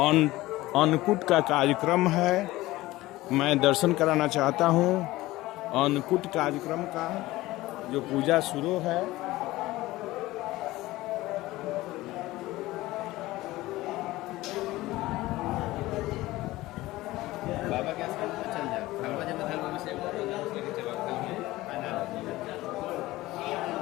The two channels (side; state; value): right; quieter; 18.0 dB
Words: अन्नकूट का कार्यक्रम है। मैं दर्शन कराना चाहता हूँ अन्नकूट कार्यक्रम का जो पूजा शुरू है। बाबा के आश्रम में चल जाओ। भगवान जब धर्म में से